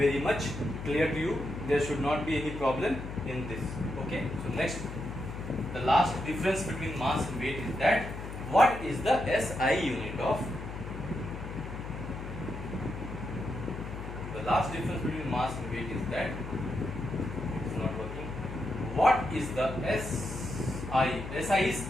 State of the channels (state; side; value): noise; left; hum, 8 dB below the sound